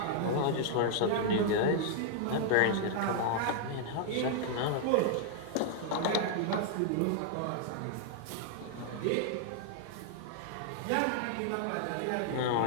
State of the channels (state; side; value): different; both; correlation 0.00